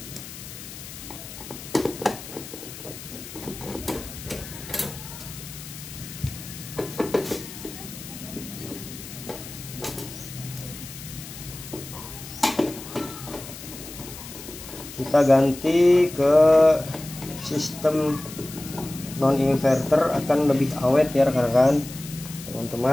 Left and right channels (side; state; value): left; noise; hiss, 13 dB below the sound